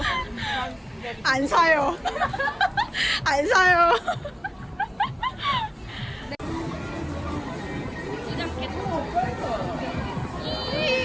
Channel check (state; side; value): identical; both; correlation 1.00